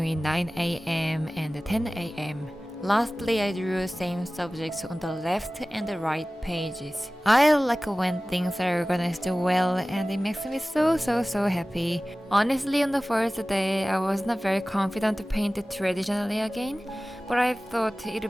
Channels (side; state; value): both; normal; correlation 0.97